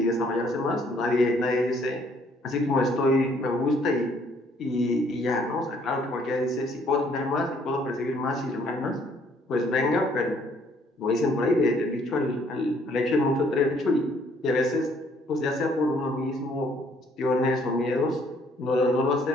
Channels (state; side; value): normal; both; correlation 0.64